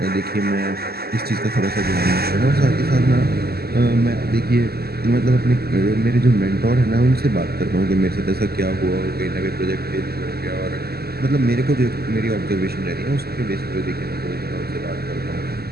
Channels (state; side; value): late; left; 0.46 ms